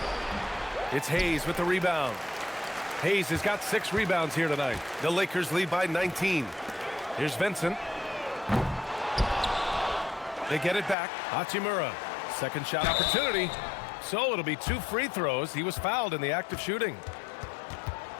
It's Hayes with the rebound. Hayes has got 6 rebounds here tonight. The Lakers lead by 19. Here's Vincent. They get it back. Hachimura. Second shot opportunity. So it'll be 2 free throws. He was fouled in the act of shooting.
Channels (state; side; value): drops out; right; at 11.0 s